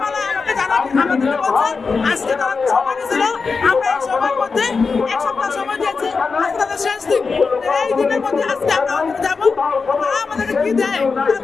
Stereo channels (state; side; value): quieter; right; 4.8 dB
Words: আমাকে আমাদেরকে বলছে আজকে তারা সময় দিয়েছিল, আমরা এই সময়ের মধ্যে 1 সপ্তাহ সময় দিয়েছি, আজকে তাদের শেষ দিন। এই দিনের মধ্যে আজকে আমরা ওখানে যাবো, তারা আমাদেরকে কি দেয়